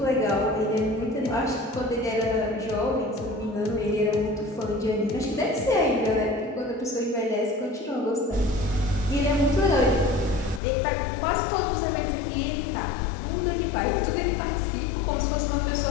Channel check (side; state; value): right; drops out; at 10.6 s